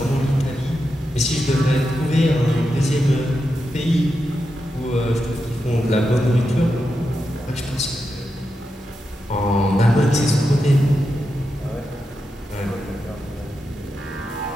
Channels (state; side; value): normal; both; correlation 0.88